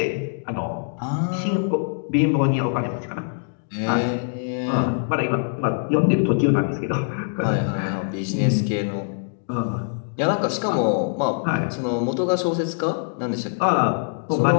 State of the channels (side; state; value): right; silent; digital silence